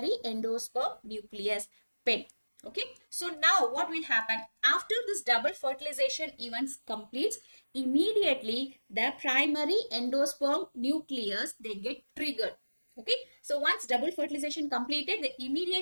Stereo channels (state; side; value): inverted; both; correlation -1.00